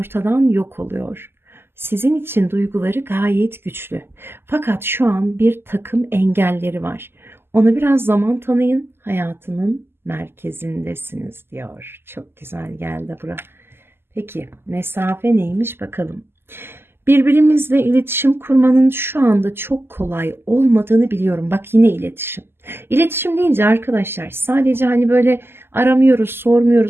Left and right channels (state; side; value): late; left; 0.11 ms